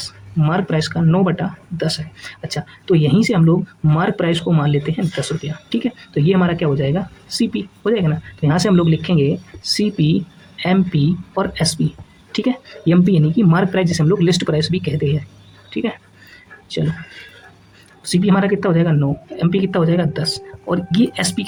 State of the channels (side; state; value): both; identical; correlation 1.00